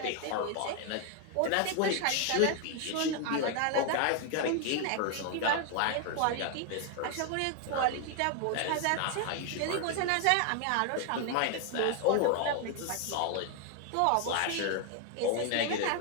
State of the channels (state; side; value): different; both; correlation 0.01